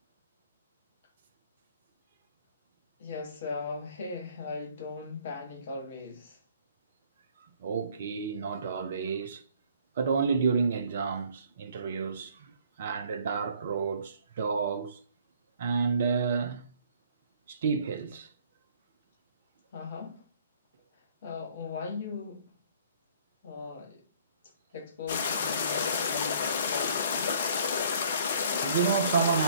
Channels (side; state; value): both; inverted; correlation -0.58